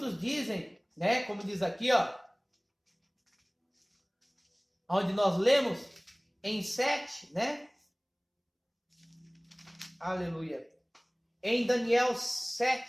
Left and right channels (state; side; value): identical; both; correlation 1.00